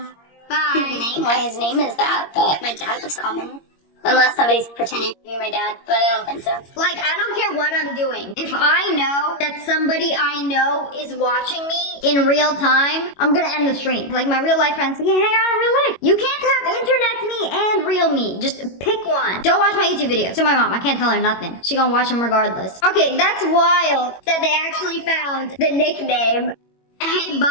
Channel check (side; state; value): right; late; 21 ms